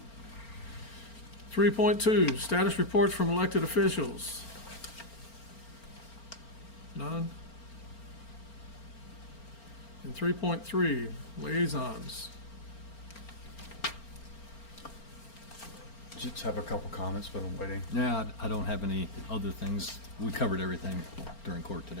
Three point two, status reports from elected officials. None? And 3.3, liaisons. Just have a couple comments, but I'm waiting. Yeah, I don't have any other things. We covered everything during court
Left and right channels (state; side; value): late; right; 4.4 ms